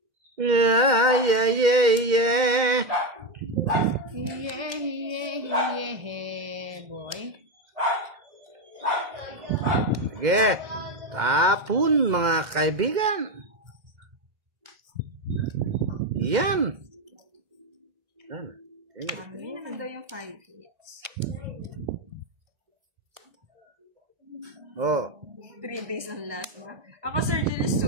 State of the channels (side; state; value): left; late; 2.1 ms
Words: Yeah. Yeah, boy. Sige. Tapon mga kaibigan. Yan. Yan na daw yung 5 hits. Oh. 3 days ng lasma. Ako, Sir Julius,